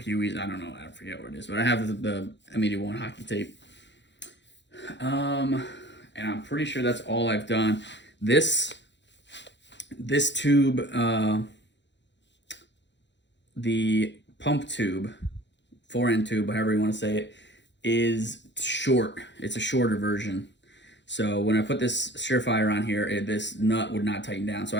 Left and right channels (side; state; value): right; late; 0.52 ms